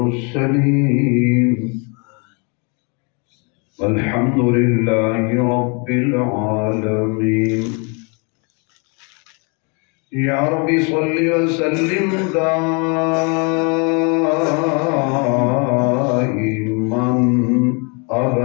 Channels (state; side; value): quieter; right; 34.2 dB